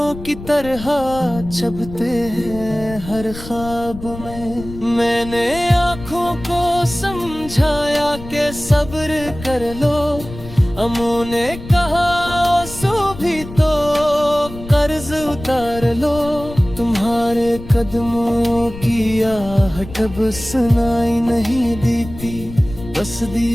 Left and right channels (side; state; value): left; noise; rumble, 13 dB below the sound